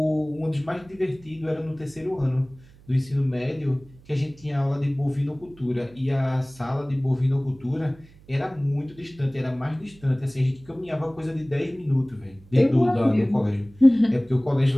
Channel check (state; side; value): noise; right; hum, 25 dB below the sound